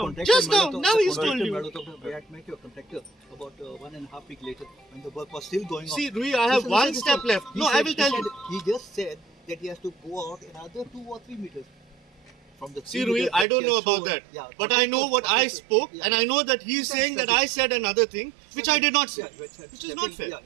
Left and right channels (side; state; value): left; drops out; at 13.5 s